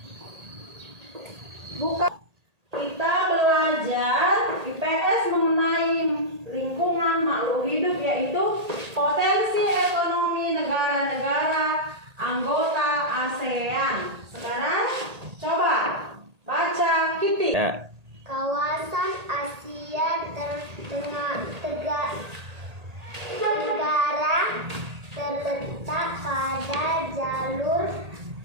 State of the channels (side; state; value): left; late; 1.8 ms